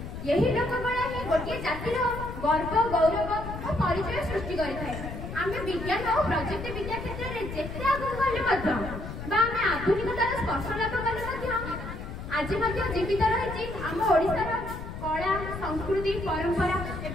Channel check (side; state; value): left; noise; rumble, 8 dB below the sound